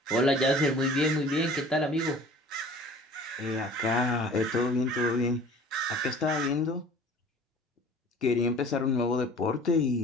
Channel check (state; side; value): normal; both; correlation 0.47